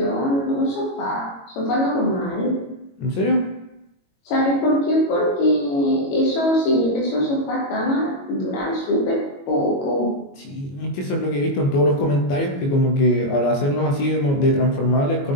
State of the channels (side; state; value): right; late; 22 ms